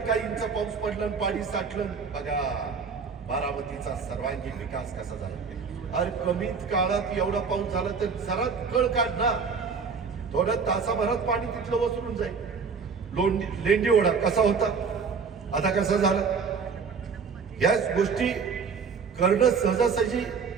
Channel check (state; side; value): quieter; left; 5.6 dB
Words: काही इंच पाऊस पडला आणि पाणी साठलं, बघा बारामतीचा सर्वांगीण विकास कसा झाला. अरे कमीत काळात एवढा पाऊस झाला तर जरा कळ काढ ना, थोड्या तासाभरात पाणी तिथलं वसरून जाईल. लेंडी ओढा कसा होता, आता कसा झाला. याच गोष्टी करणं सहजासहजी